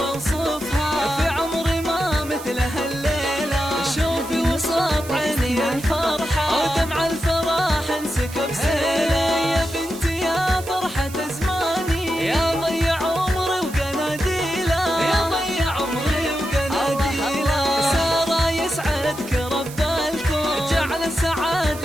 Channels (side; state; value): right; noise; hiss, 15 dB below the sound